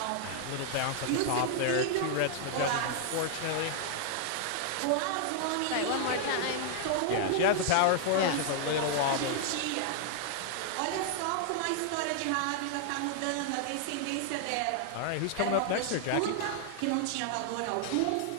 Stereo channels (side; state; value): both; different; correlation 0.00